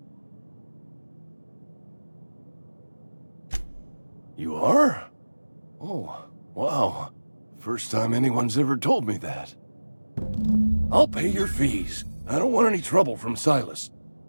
You are? Oh, wow. First time anyone's ever told me that. I'll pay your fees. I don't want any trouble from Silas.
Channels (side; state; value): both; inverted; correlation -1.00